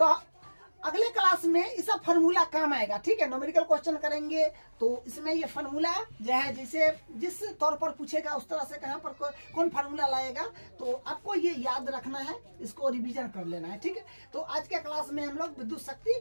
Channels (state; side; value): inverted; both; correlation -1.00